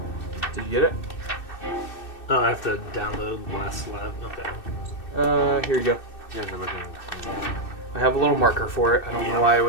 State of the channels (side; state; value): right; late; 2.6 ms